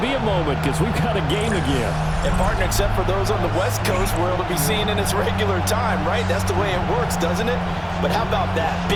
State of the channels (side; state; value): both; identical; correlation 1.00